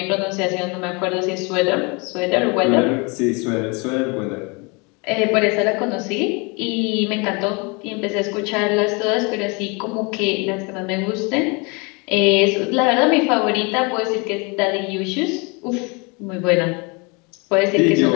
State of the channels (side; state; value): right; quieter; 29.9 dB